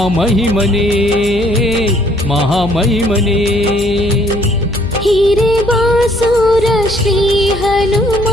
ಮಹಾಮಹಿಮನೇ ಹೀರೆ ಬಾಸೂರ ಶ್ರೀ ಹನುಮ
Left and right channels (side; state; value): left; noise; hum, 11 dB below the sound